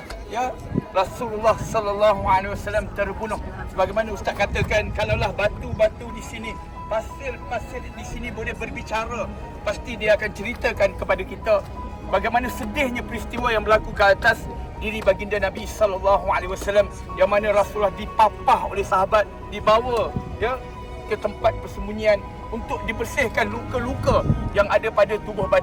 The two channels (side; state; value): both; identical; correlation 1.00